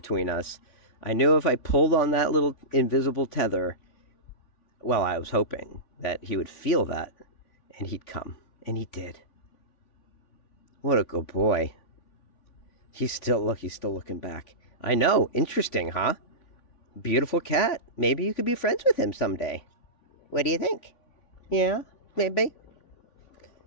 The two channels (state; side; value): late; right; 3.5 ms